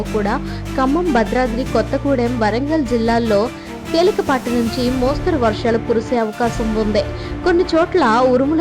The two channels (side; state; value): both; identical; correlation 1.00